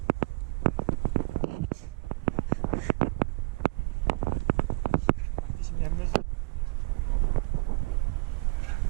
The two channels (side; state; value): left; quieter; 26.6 dB